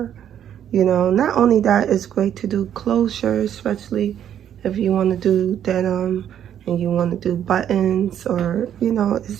not only that, it's great to do closure, especially if you want to do denim and you want to do buttons, or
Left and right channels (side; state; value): left; quieter; 9.9 dB